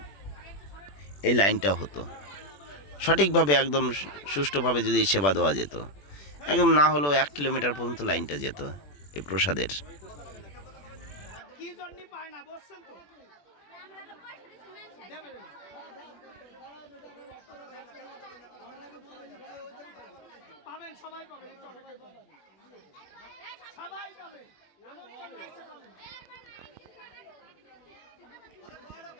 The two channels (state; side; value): late; right; 21 ms